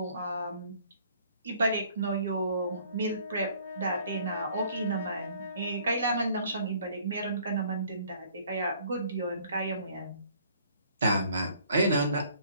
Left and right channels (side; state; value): both; inverted; correlation -0.58